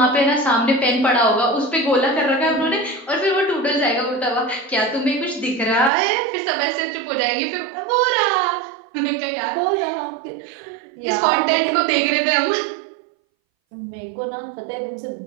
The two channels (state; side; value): drops out; left; at 5.9 s